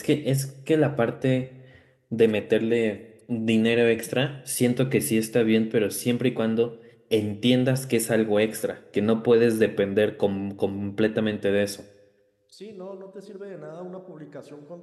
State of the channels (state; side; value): identical; both; correlation 1.00